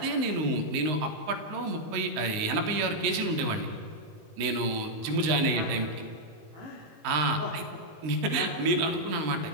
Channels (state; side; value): late; left; 19 ms